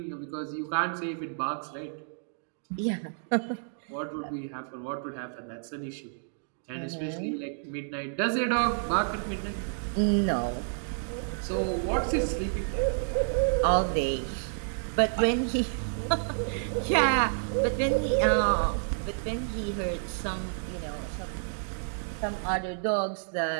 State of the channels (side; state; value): left; silent; digital silence